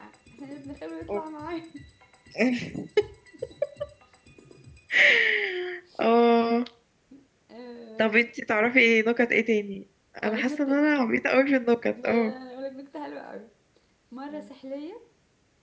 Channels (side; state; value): both; identical; correlation 1.00